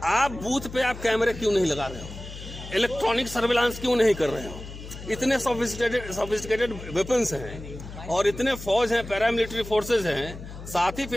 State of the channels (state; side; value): noise; left; hum, 12 dB below the sound